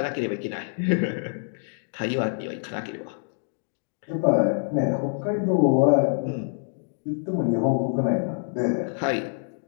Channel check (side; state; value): right; silent; 59 dB below the other